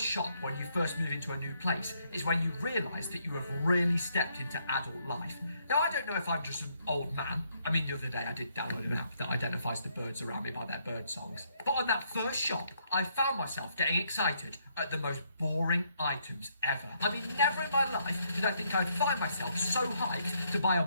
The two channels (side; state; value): both; inverted; correlation -0.72